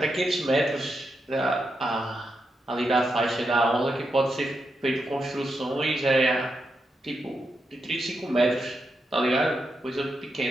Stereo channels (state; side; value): normal; both; correlation 0.85